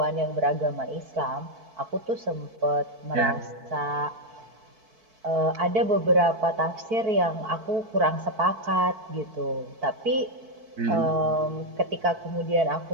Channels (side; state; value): left; late; 4.5 ms